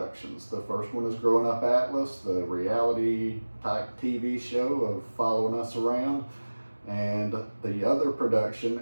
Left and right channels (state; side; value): inverted; both; correlation -1.00